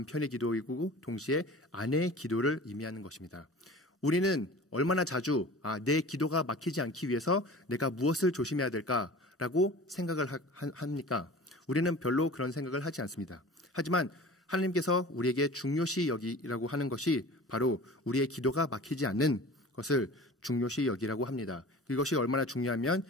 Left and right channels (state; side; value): normal; both; correlation 0.40